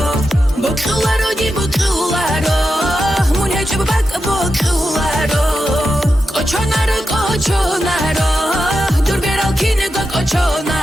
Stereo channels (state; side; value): normal; both; correlation 0.89